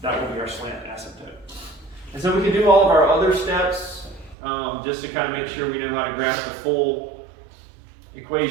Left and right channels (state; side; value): drops out; left; at 4.4 s